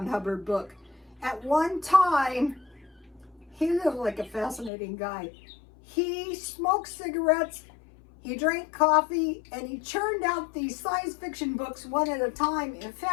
Hubbard book. At one time, he looked like a fascinating guy. He smoked cigarettes, he drank coffee, and he churned out these science fiction books one at a time. In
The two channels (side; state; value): right; drops out; at 4.7 s